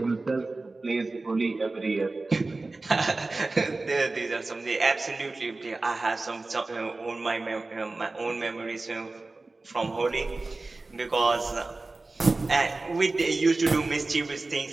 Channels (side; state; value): left; quieter; 3.3 dB